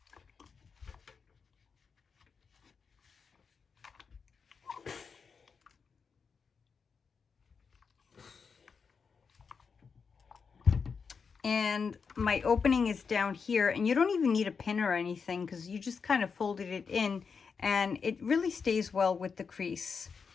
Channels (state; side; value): quieter; right; 5.6 dB